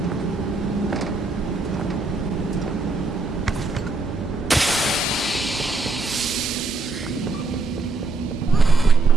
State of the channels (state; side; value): quieter; left; 3.4 dB